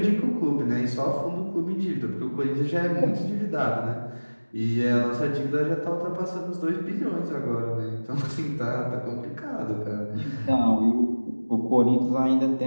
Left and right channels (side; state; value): both; inverted; correlation -1.00